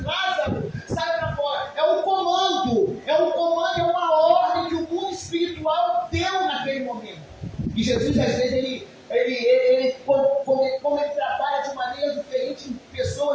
Lázaro, sai para fora. É um comando, é uma ordem que o mundo espiritual deu naquele momento. Jesus, às vezes, como ele trabalha de maneira diferente, em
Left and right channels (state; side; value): identical; both; correlation 1.00